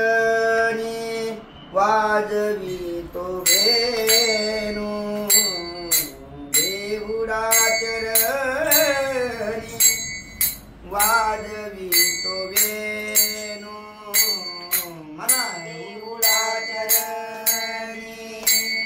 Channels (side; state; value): both; identical; correlation 1.00